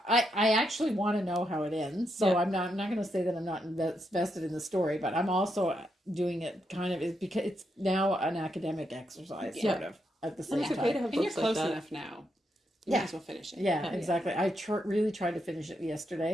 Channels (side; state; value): both; normal; correlation 0.81